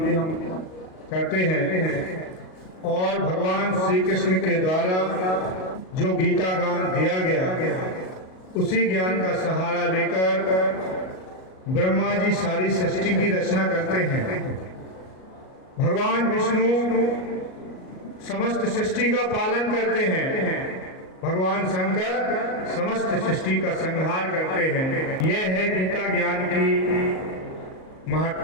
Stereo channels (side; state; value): right; late; 38 ms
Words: करते हैं। और भगवान श्री कृष्ण के द्वारा जो गीता ज्ञान दिया गया, उसी ज्ञान का सहारा लेकर ब्रह्मा जी सारी सृष्टि की रचना करते हैं। भगवान विष्णु समस्त सृष्टि का पालन करते हैं। भगवान शंकर समस्त सृष्टि का संहार करते हैं। यह है गीता ज्ञान की